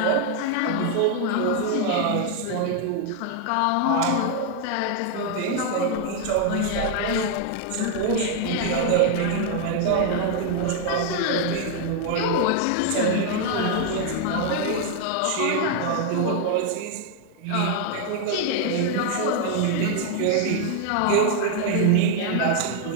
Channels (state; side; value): different; both; correlation 0.00